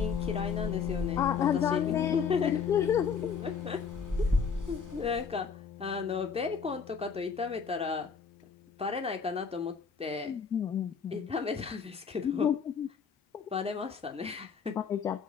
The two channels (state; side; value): quieter; right; 6.1 dB